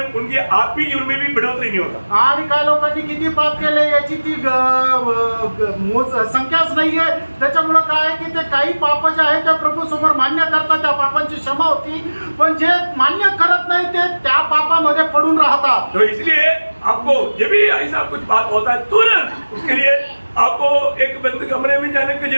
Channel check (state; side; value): inverted; both; correlation -1.00